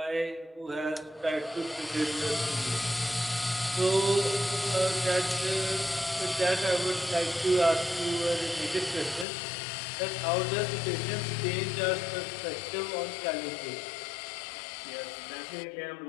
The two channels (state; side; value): drops out; right; at 9.2 s